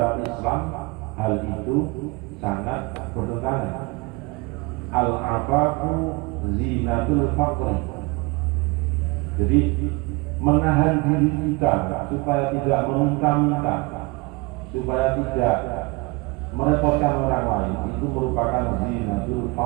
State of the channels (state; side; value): quieter; left; 25.8 dB